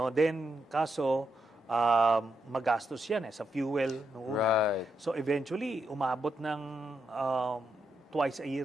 then kaso magastos yan sa fuel noong una. Right. So eventually umabot ng twice a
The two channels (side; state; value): both; normal; correlation 0.82